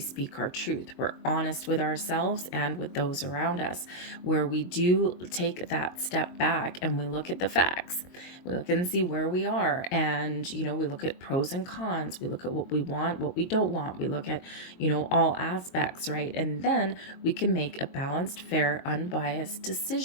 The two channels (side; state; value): right; late; 22 ms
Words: our truth. We're honest with ourselves and with those around us, where we do take that step back and we look at the facts. We look and see where we are, and we look at pros and cons. We look at what we want, what we don't want. We look at all aspects, right? And then we can make a balanced, fair, unbiased